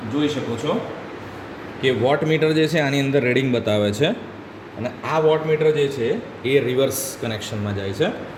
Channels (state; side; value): identical; both; correlation 1.00